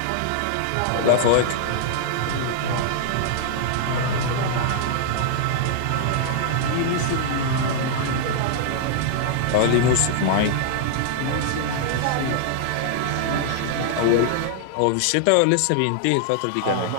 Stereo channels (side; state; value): both; different; correlation -0.01